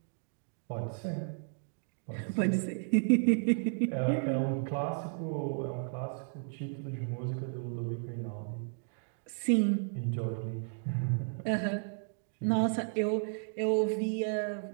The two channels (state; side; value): silent; left; 55 dB below the other